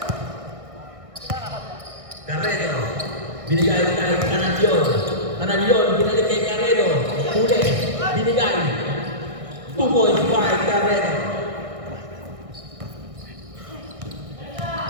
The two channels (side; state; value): left; late; 1.6 ms